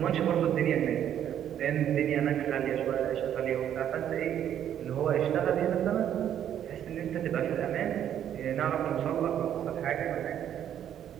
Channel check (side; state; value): left; quieter; 10.2 dB